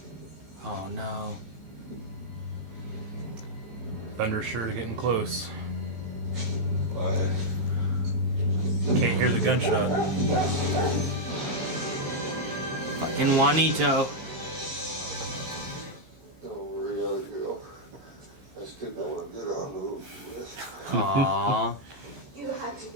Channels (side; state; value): left; late; 15 ms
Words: Oh no. Thunder's sure getting close. Can't hear the gunshot. Fucking Juanito. Don't worry, other girl. I still want to get on the roof. Aww. You have to